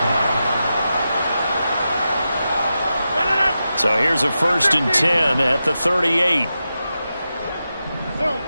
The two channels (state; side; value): inverted; both; correlation -0.90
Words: So here's a 1st and 10 at the 38.